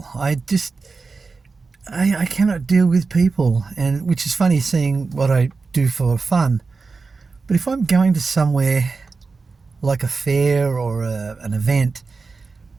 I cannot deal with people, and which is funny seeing what I do for fun. But if I'm going to somewhere like a fair or an event,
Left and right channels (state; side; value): quieter; left; 4.3 dB